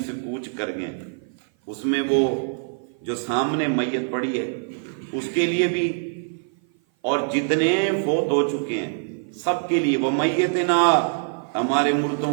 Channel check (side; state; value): left; silent; 55 dB below the other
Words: سے کوچ کر گئے. اس میں وہ جو سامنے میت پڑی ہے اس کے لیے بھی، اور جتنے فوت ہو چکے ہیں سب کے لیے. وہ میتنا، ہمارے